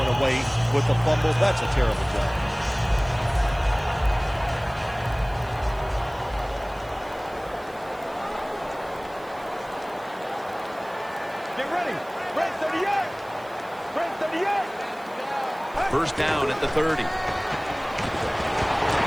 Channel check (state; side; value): noise; right; hiss, 26 dB below the sound